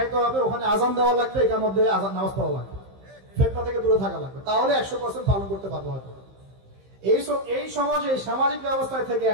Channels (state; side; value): late; left; 15 ms